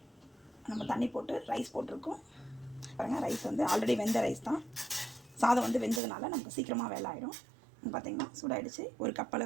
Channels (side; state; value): left; drops out; at 6.0 s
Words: நம்ம தண்ணி போட்டு ரைஸ் போட்டிருக்கோம். பாருங்கள், ரைஸ் வந்து ஆல்ரெடி வெந்த ரைஸ் தான். சாதம் வந்து வெந்ததுனால நமக்கு சீக்கிரமாக வேலை ஆகிடும். பார்த்திங்கன்னா சூடாகிடுச்சு. ஒரு கப்